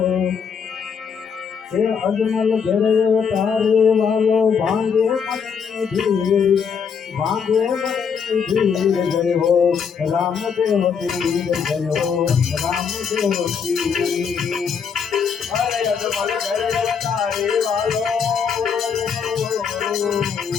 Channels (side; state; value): right; quieter; 6.6 dB